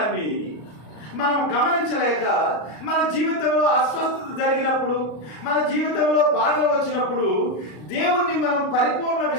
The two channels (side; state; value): right; late; 33 ms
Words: మనం గమనించలేక మన జీవితంలో అస్వస్థత జరిగినప్పుడు, మన జీవితంలో బాధలు వచ్చినప్పుడు దేవుణ్ణి మనం పరిపూర్ణ